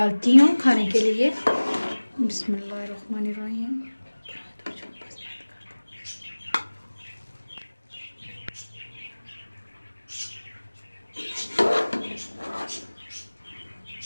हूँ खाने के लिए। बिस्मिल्लाहिर्रहमानिर्रहीम।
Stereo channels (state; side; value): inverted; both; correlation -1.00